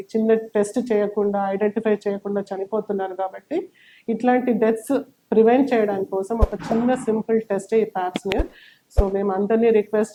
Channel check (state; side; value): identical; both; correlation 1.00